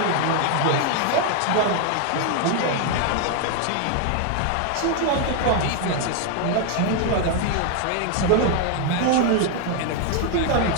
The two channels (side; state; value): both; different; correlation 0.00